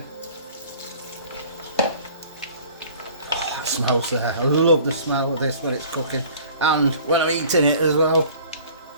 That smells there. I love the smell of this when it's cooking, and when I'm eating it as well.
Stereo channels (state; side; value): inverted; both; correlation -0.49